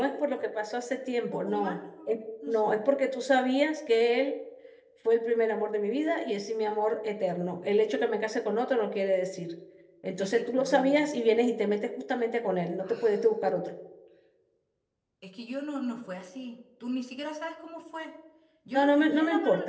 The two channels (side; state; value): both; identical; correlation 1.00